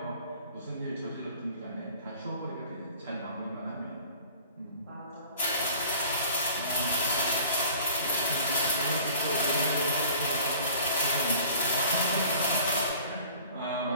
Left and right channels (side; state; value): both; inverted; correlation -0.48